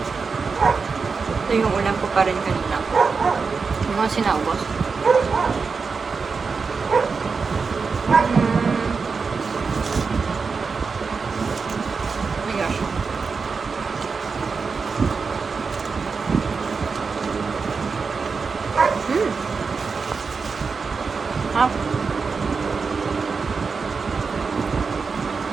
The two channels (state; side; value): quieter; left; 5.0 dB